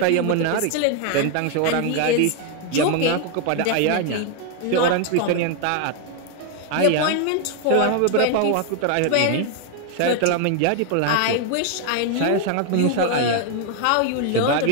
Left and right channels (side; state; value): both; different; correlation 0.01